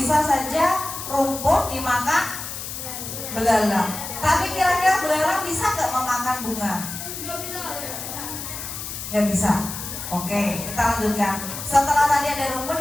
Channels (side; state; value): left; noise; hiss, 8 dB below the sound